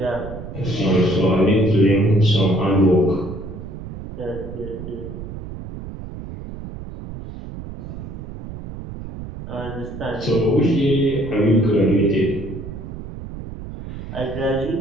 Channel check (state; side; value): noise; right; rumble, 10 dB below the sound